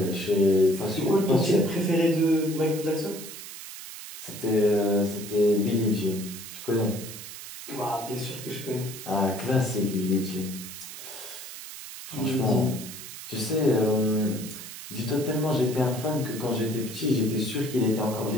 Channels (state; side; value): noise; right; hiss, 12 dB below the sound